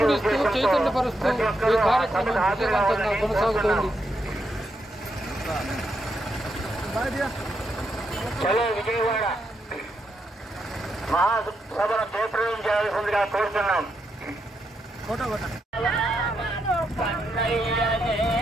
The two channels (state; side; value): normal; both; correlation 0.81